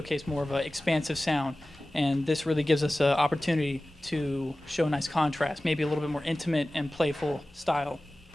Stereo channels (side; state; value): both; normal; correlation 0.97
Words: more of an expansive sound, and this really gives us an opportunity to show a nice contrast, maybe a little bit more intimate and playful style.